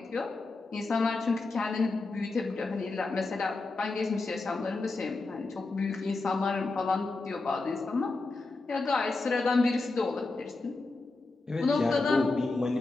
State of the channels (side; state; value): right; quieter; 3.4 dB